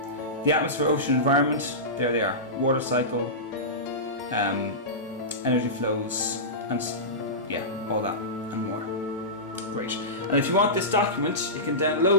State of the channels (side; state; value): both; normal; correlation -0.17